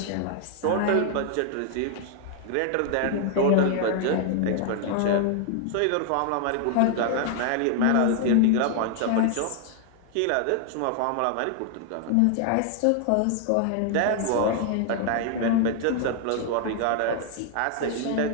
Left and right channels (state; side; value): different; both; correlation 0.00